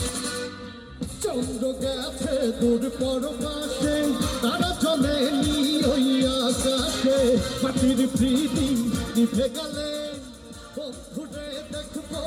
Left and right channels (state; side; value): identical; both; correlation 1.00